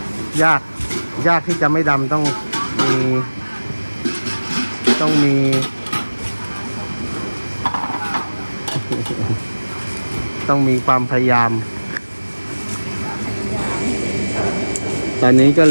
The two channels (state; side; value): inverted; both; correlation -1.00